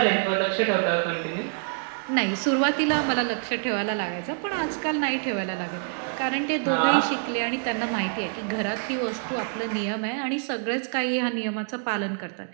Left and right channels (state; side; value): silent; left; 57 dB below the other